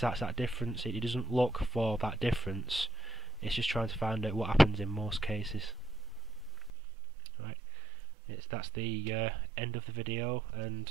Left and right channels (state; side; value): drops out; left; at 6.7 s